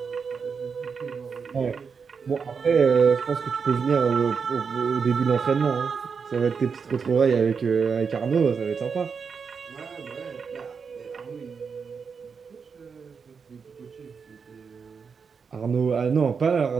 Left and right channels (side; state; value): left; quieter; 5.8 dB